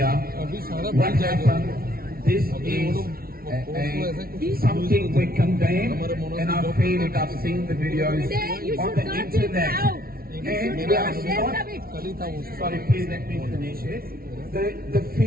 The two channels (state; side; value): late; left; 0.44 ms